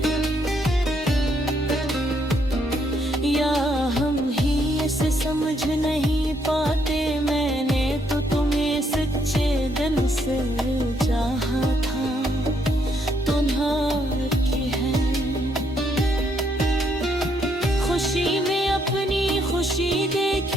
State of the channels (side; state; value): both; normal; correlation 0.72